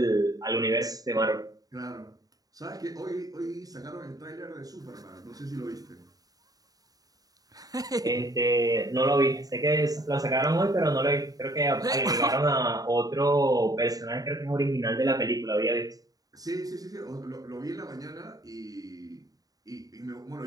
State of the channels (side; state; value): left; late; 0.18 ms